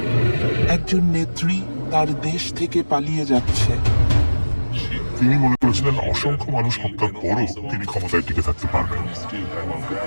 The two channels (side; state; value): both; inverted; correlation -1.00